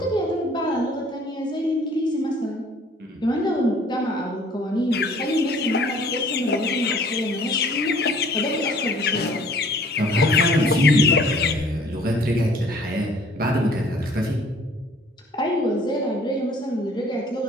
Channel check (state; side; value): normal; both; correlation 0.55